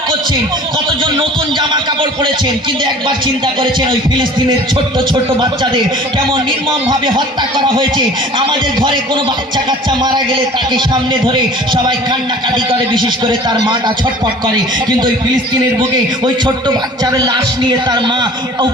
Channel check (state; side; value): normal; both; correlation 0.45